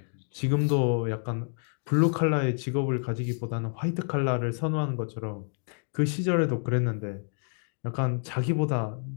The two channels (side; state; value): right; silent; 59 dB below the other